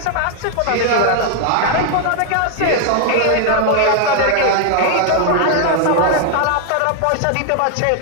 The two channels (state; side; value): different; both; correlation 0.00